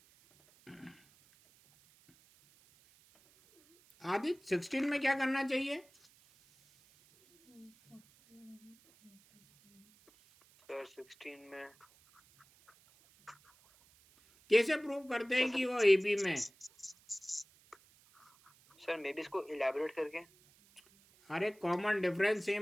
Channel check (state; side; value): noise; right; hiss, 29 dB below the sound